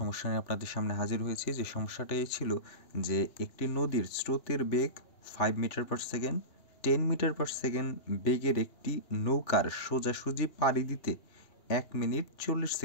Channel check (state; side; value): late; right; 2.9 ms